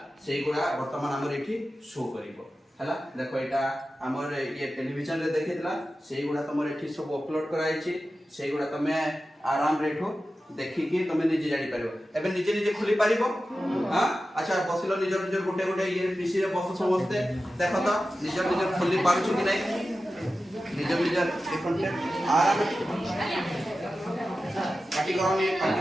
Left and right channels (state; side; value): normal; both; correlation 0.93